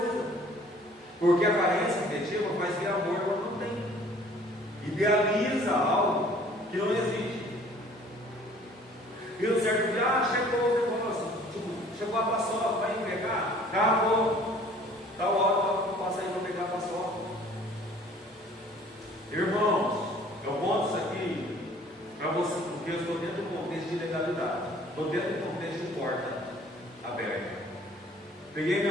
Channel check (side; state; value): both; normal; correlation 0.53